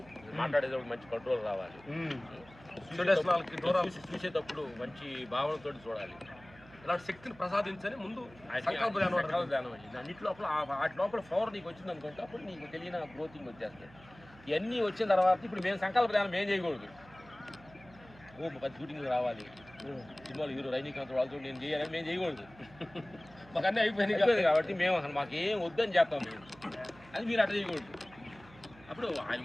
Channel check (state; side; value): noise; right; hum, 23 dB below the sound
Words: మాట్లాడేటప్పుడు మంచి కంట్రోల్ రావాలి, చూసేటప్పుడు మంచి భావనతో చూడాలి. ఇలాంటి శక్తిని ప్రసాదించని ముందు సంకల్ప ధ్యానం అయింది. అన్నిటి లోపల వాటి లోపల పవర్ నీకు వచ్చింది అనుకుంటే అప్పుడు నీకు తెలియని గ్రోతింగ్ వచ్చేస్తాయి. ఇవన్నీ వచ్చిన తర్వాత ఇప్పుడు మేము సంకల్ప ధ్యానం ఏం చేయకూడదు, 10 షూటింగ్లు రావాలి, సినిమాలు హీరో రజనీకాంత్ వాళ్ళతో నేను చేయాలని మేము చేయకూడదు. మాకు అన్నీ అయిపోయినాయి కాబట్టి మేము అసలు మాకు ఏం వద్దని చేస్తాం మేము, అది మీరు అట్లా చేయకూడదు. అప్పుడు ఆయన